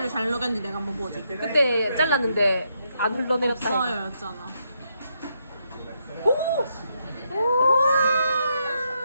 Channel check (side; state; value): both; inverted; correlation -0.78